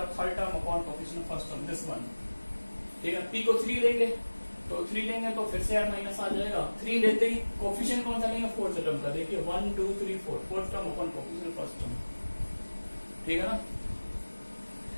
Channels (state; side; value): inverted; both; correlation -1.00